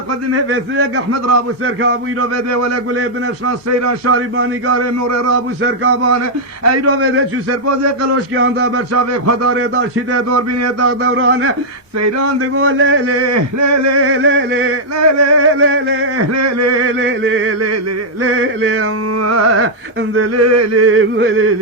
قدمه وسیق احمد رابو سرکابوی رو بده ولی گله بنفشان سیران شاریبانی گاره نور رابو سرکابانه ای رو بده چو سرپاز قلوش که آندا برچاوه خداره دار چیده دور بینه داغ دورانه سیران دگو لی لی لی لی لی لی لی لی لی لی لی لی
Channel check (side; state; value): both; normal; correlation -0.05